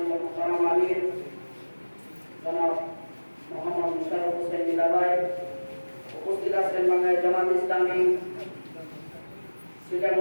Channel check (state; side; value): inverted; both; correlation -1.00